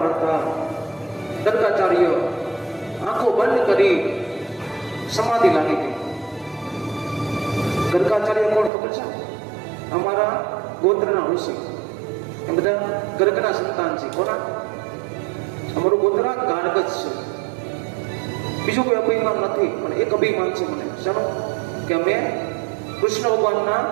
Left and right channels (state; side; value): drops out; left; at 8.7 s